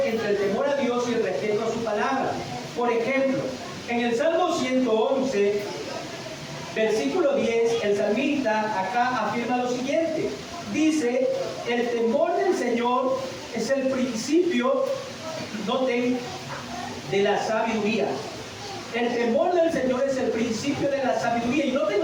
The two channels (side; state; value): both; identical; correlation 1.00